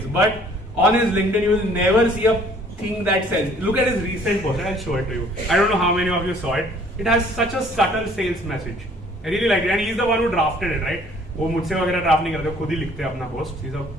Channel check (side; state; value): both; normal; correlation 0.57